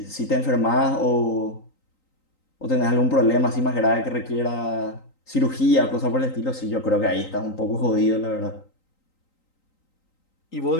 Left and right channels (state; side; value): late; right; 3.9 ms